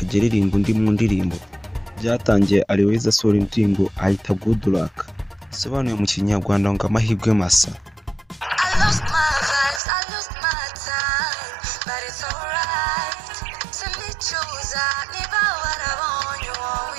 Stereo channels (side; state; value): left; drops out; at 9.8 s